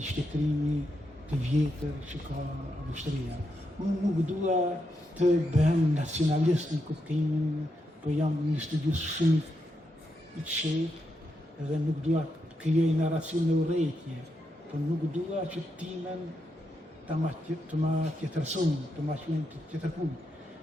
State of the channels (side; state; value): both; normal; correlation 0.83